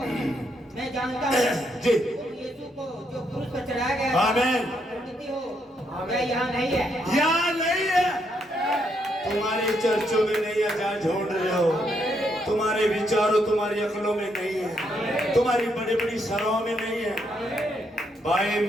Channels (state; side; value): normal; both; correlation 0.76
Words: मैं जानता हूँ जी यीशु को जो क्रूस पर चढ़ाया गया, आमीन, प्रकृति हो, वह यहाँ नहीं है, यहाँ नहीं है। तुम्हारे चर्चों में नहीं है जहाँ ढूंढ रहे हो, तुम्हारे विचारों तुम्हारी अकलों में नहीं है, तुम्हारी बड़ी बड़ी सराहों में नहीं है। भाई